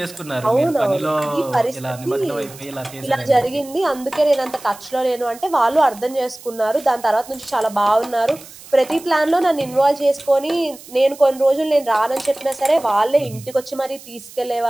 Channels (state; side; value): noise; right; hiss, 19 dB below the sound